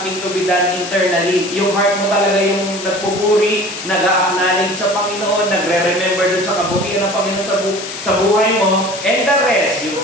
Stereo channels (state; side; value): noise; left; hiss, 10 dB below the sound